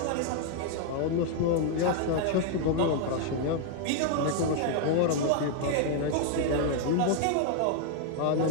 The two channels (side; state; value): both; different; correlation 0.00